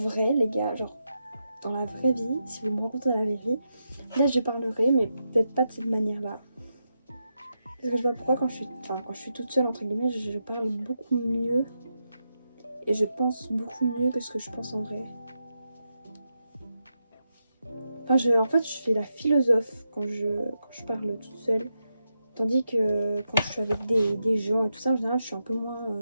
les gars, genre dans la vraie vie, si vous me rencontrez dans la vraie vie, là je parlerai mais peut-être pas de cette manière-là. Parce que je sais pas pourquoi quand je suis toute seule entre guillemets, je parle beaucoup mieux et je pense beaucoup mieux que ce que je pense en vrai. Enfin, en fait, je fais la philosophe quand je parle toute seule. Tandis que quand je suis avec des gens et tout ça, en général, je suis un peu moins...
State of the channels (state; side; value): inverted; both; correlation -0.86